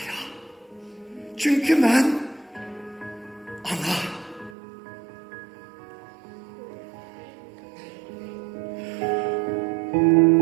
çünkü ben ana.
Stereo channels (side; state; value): left; drops out; at 4.5 s